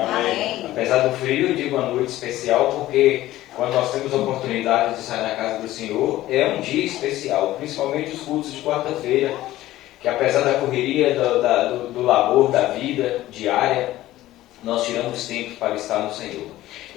Apesar do frio, eu digo uma noite especial porque quando nós temos a oportunidade de sair na casa do Senhor, é um dia especial, principalmente os cultos de quarta-feira, que apesar da correria, do labor, da vida diária, nós tiramos tempo para estar no Senhor.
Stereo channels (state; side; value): quieter; right; 15.4 dB